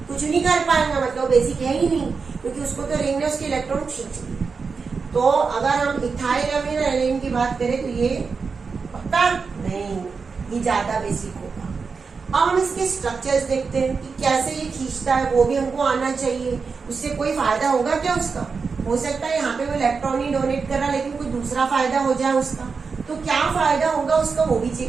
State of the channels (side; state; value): left; quieter; 5.0 dB